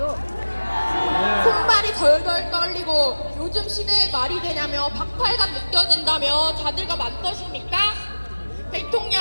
손발이 덜덜 떨리고 요즘 시대에 말이 되냐며 박탈감 느껴진다며 자들과 맞서십니까?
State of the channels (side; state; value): both; inverted; correlation -1.00